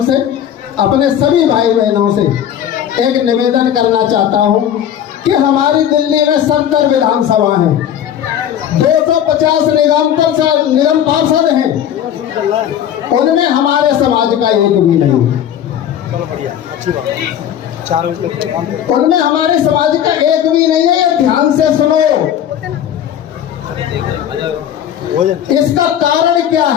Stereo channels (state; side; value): quieter; right; 10.0 dB